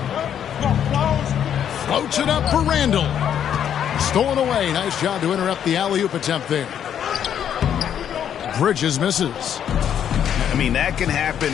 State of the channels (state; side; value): quieter; right; 9.3 dB